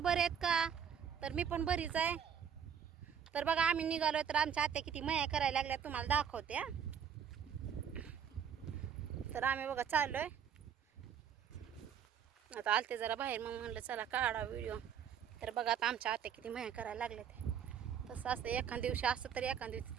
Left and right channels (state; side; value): quieter; left; 8.1 dB